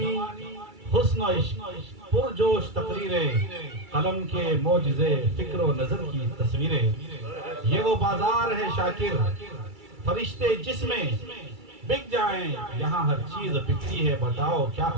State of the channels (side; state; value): left; late; 2.3 ms